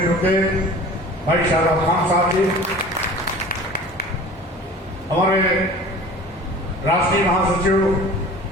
रुके भाई शाहरुख खान साहब जी, हमारे राष्ट्रीय महासचिव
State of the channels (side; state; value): both; normal; correlation 0.42